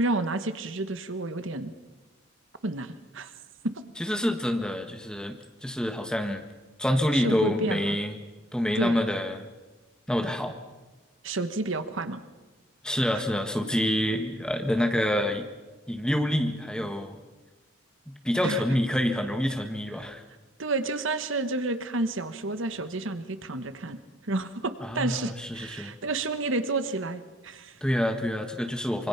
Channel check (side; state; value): both; normal; correlation 0.67